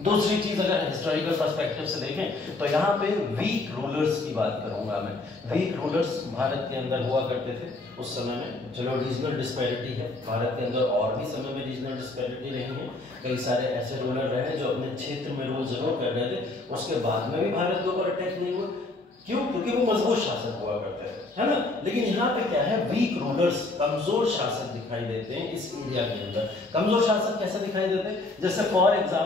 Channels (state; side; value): quieter; right; 3.1 dB